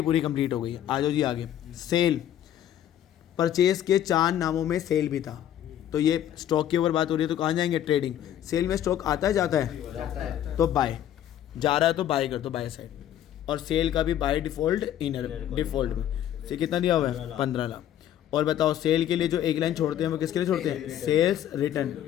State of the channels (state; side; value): quieter; right; 11.1 dB